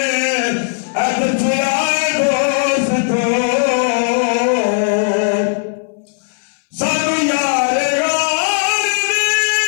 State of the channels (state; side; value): silent; right; 64 dB below the other